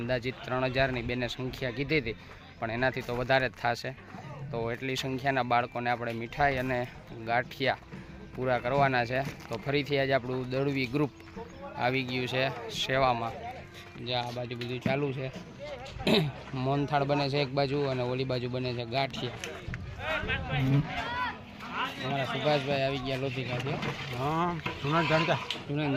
3000ની બેને સંખ્યા કીધી હતી, પણ એનાથી તો વધારે જ થશે। તો એટલી સંખ્યાના બાળકોને આપણે મીઠાઈ અને ગાંઠિયા પૂરા કરવાના છે। તો ફરીથી આજે આપણું દળવી ગ્રુપ આવી ગયું છે સેવામાં। જે આ બાજુ બધું ચાલુ છે, મોહનથાળ બને છે એક બાજુ અને ઓલી બાજુ બને છે ગાંઠિયા। અમારા સુભાષભાઈ આવી ગયા લોધિકાથી। હા, જૂના જાણીતા।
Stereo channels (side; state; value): both; identical; correlation 1.00